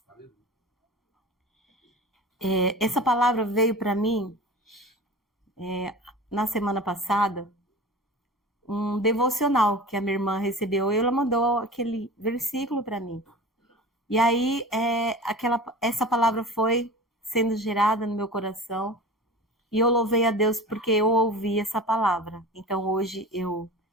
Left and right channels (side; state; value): both; normal; correlation 0.36